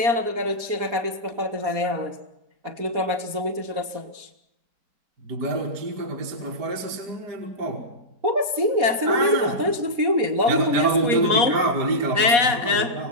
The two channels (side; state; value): left; late; 4.2 ms